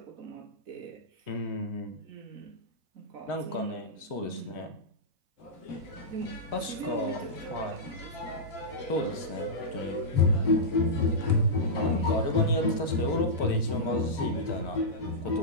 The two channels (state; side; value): late; left; 3.1 ms